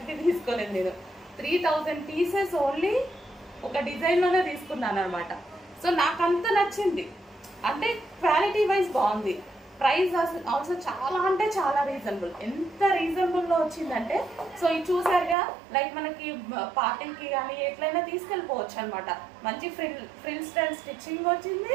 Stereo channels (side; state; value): left; drops out; at 15.4 s